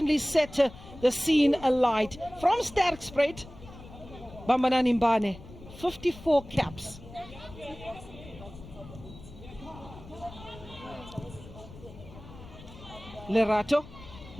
set the scene alight. From Sterkspreid, Bambanani Mbane, 54 caps. Lerato,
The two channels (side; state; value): left; noise; rumble, 17 dB below the sound